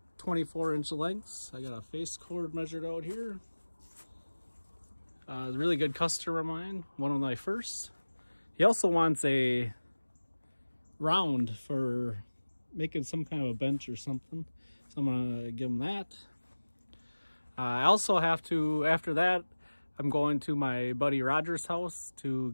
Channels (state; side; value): inverted; both; correlation -1.00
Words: 24-inch lengths. I got a face cord measured out here. A really good customer of mine, one of my first. He also wants a round for making some kind of a bench or something. So I'm gonna give him that. I also have to, after that, I'm going to my buddy Roger's house to